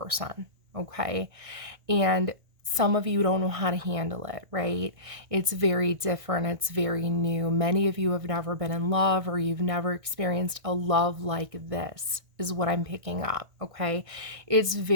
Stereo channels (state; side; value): late; left; 1.6 ms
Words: okay? And some of you don't know how to handle it, right? It's very different. It's very new. Many of you have never been in love, or you've never experienced a love like this, is what I'm picking up, okay? It's